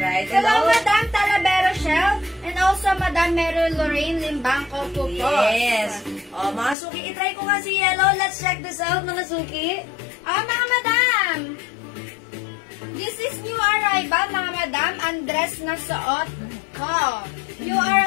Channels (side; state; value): right; drops out; at 6.8 s